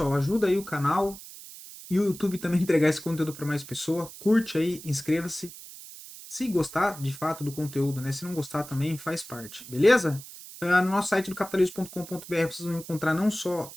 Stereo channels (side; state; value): right; noise; hiss, 15 dB below the sound